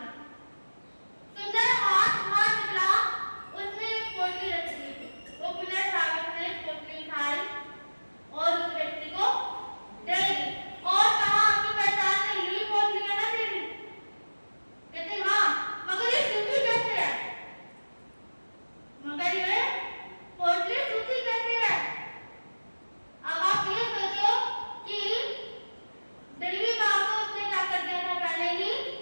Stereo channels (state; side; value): inverted; both; correlation -1.00